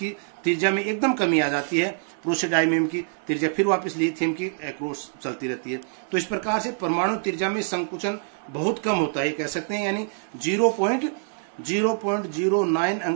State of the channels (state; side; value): silent; left; digital silence